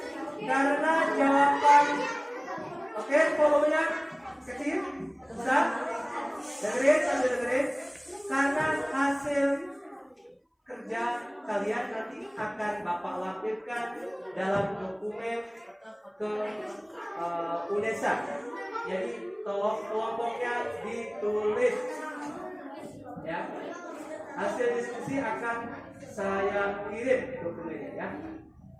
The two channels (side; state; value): both; identical; correlation 1.00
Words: Karena jawaban, oke, volume-nya kecil, besar, dengerin sambil dengerin. Karena hasil kerja kalian nanti akan Bapak lampirkan dalam dokumen ke UNESA. Jadi tolong kelompoknya ditulis. Ya, hasil diskusi akan saya kirim dokumennya ya.